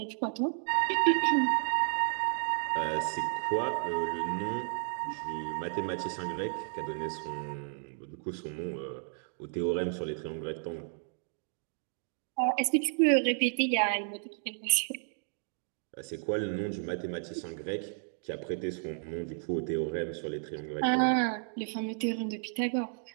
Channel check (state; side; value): silent; left; 56 dB below the other